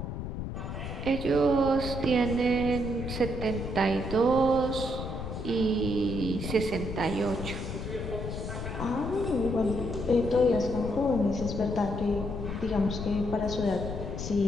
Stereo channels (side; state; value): left; noise; rumble, 6 dB below the sound